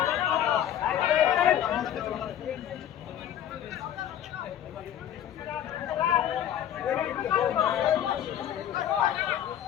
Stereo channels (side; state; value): right; quieter; 10.5 dB